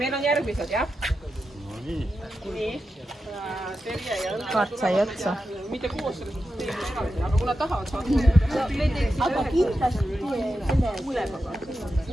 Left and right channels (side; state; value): both; normal; correlation 0.90